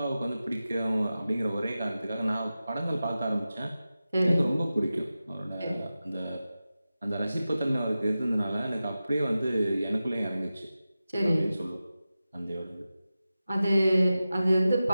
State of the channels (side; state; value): both; inverted; correlation -0.94